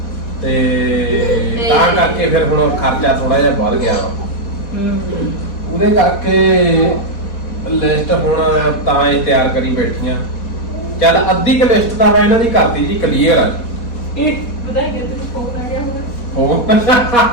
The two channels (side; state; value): right; late; 4.1 ms